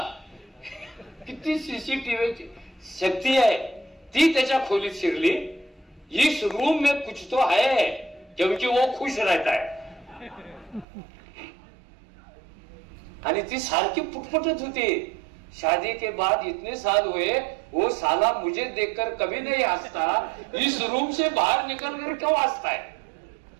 किती CCTV शक्ती आहे. ती त्याच्या खोलीत शिरली. इस रूम में कुछ तो है क्योंकि वो खुश रहता है. आणि ती सारखी पुटपुटत होती, शादी के बाद इतने साल हुए, वो साला मुझे देखकर कभी नहीं हंसता, इस रूम से बाहर निकल कर क्यों हंसता है?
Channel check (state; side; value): drops out; left; at 10.9 s